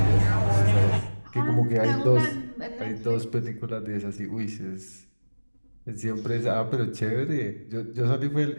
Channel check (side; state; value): both; inverted; correlation -1.00